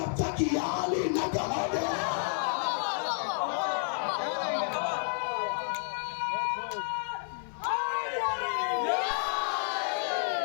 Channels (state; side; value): silent; right; digital silence